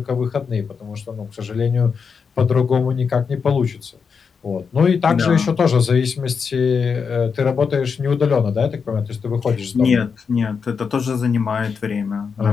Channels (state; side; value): quieter; right; 5.9 dB